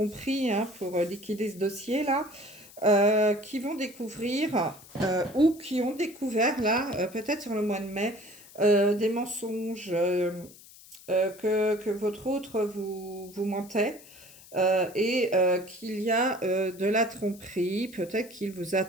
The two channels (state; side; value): noise; left; hiss, 21 dB below the sound